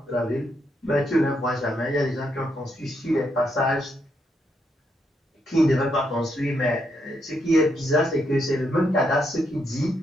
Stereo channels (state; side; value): normal; both; correlation 0.78